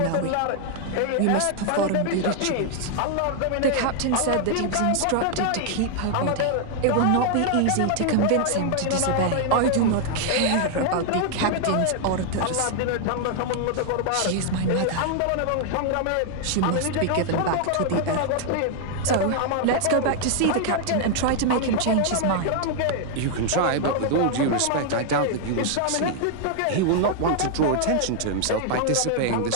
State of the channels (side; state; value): both; different; correlation 0.00